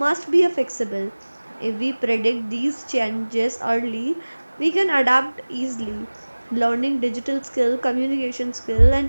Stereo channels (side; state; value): both; inverted; correlation -1.00